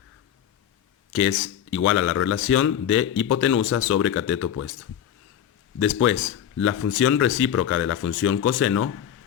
que es igual a la relación de hipotenusa sobre cateto opuesto. Después, la función recíproca de la función coseno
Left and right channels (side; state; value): right; quieter; 9.9 dB